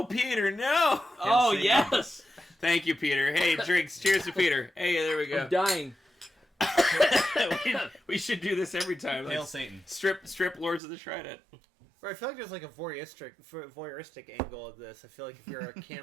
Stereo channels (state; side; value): drops out; left; at 10.8 s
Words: Peter, no. Oh yes, Thank you, Peter. Hey, drinks. Cheers to Peter. Hey, there we go. I'm dying. we should do this every time. Hail Like, Satan. strip Lords of the Trident. Right, I feel like there's like a voyeuristic angle of this. I feel like if you're a